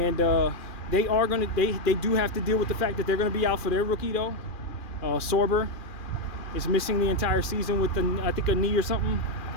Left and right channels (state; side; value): late; right; 2.4 ms